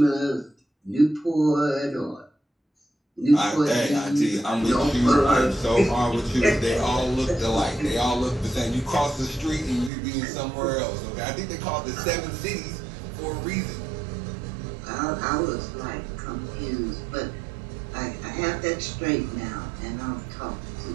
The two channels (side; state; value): left; drops out; at 9.9 s